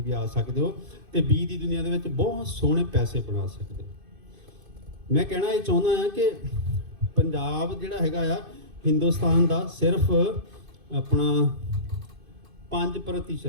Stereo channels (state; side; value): late; left; 2.5 ms